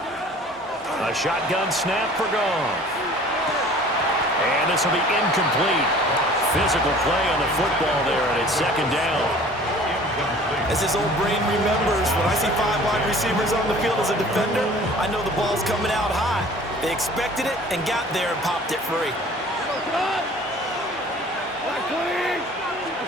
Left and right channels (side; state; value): both; normal; correlation 0.48